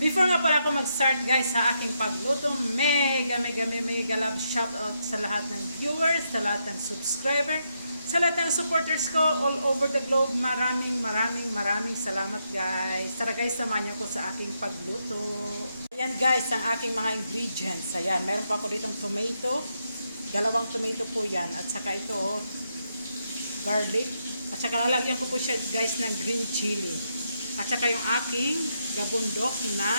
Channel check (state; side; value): inverted; both; correlation -0.81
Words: nga pala ako mag-start guys sa aking pagluto, mega love shout out sa lahat ng viewers, sa lahat ng subscriber, sa lahat ng supporters ko all over the globe. Maraming salamat guys. Tara guys, samahan niyo ko sa aking pagluto. Ayan guys, ang aking mga ingredients. Ayan, meron pa ako ditong tomato. Dalawang tomato po yan. At saka ito, garlic. At saka lalagyan ko po siya guys ng green chili. At saka yung aking gabundok na